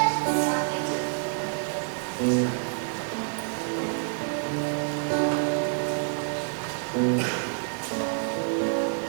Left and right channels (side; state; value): left; silent; 60 dB below the other